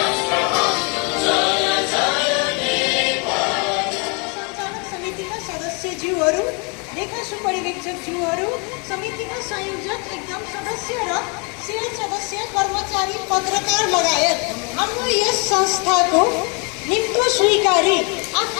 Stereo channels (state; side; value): quieter; right; 34.2 dB